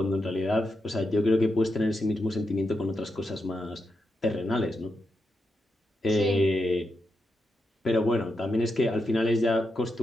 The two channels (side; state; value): both; normal; correlation 0.86